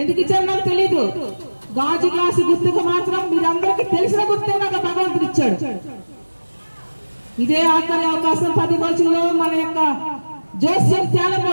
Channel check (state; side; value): inverted; both; correlation -1.00